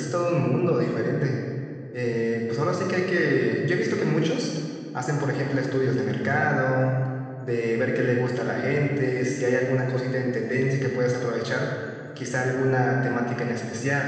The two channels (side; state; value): both; identical; correlation 1.00